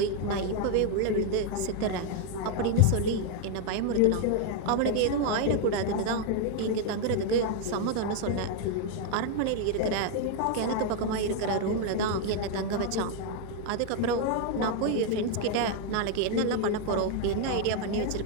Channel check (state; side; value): different; both; correlation 0.00